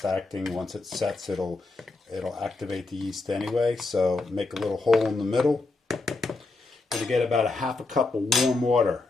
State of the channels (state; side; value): quieter; right; 3.4 dB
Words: acting. Once it sets, it'll activate the yeast anyway. So make a little hole in the middle. Going to get about 1/2 cup of warm water.